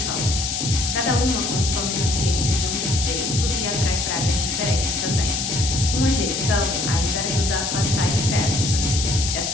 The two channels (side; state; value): left; noise; hiss, 2 dB below the sound